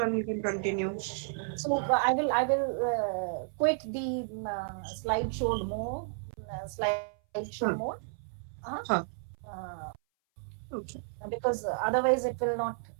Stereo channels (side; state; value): left; silent; 56 dB below the other